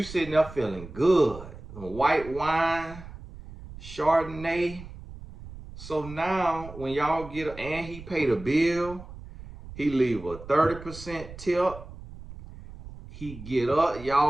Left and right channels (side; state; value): right; noise; rumble, 15 dB below the sound